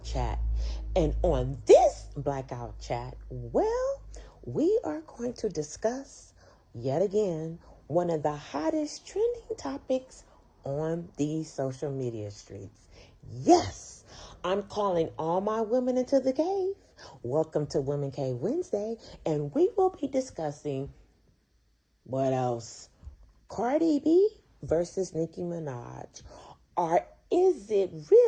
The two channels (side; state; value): both; identical; correlation 1.00